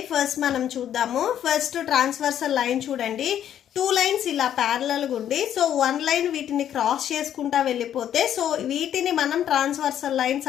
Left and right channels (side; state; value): right; quieter; 10.3 dB